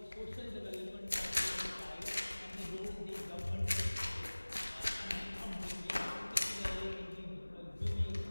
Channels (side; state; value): both; inverted; correlation -1.00